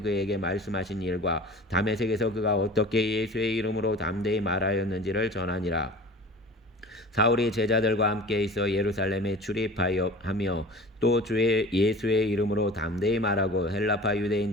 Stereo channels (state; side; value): normal; both; correlation 0.40